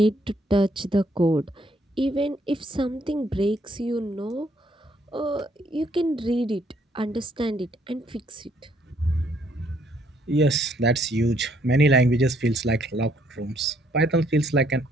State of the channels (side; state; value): both; normal; correlation 0.68